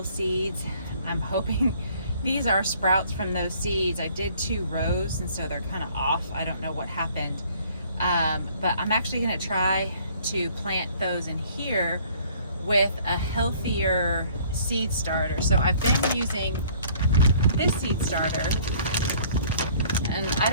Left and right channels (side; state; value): both; inverted; correlation -0.57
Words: seeds. I'm hoping these are sprouts from those seeds. I did 2 rows, and so they're kind of off. I don't know what happened. But I'm actually going to try to plant those in here with a healthier seed starter. So I've been using this seed starter, and I